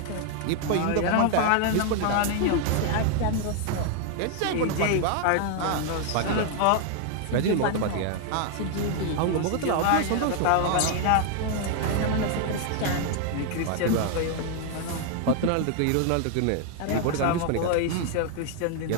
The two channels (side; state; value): both; different; correlation 0.00